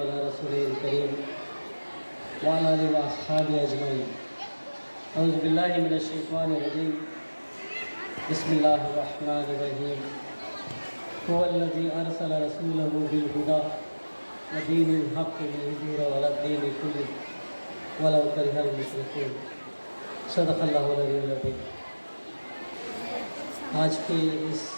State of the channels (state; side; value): inverted; both; correlation -1.00